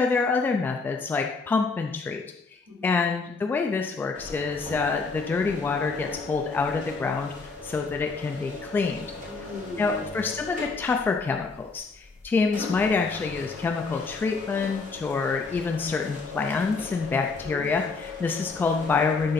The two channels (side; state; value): right; quieter; 4.3 dB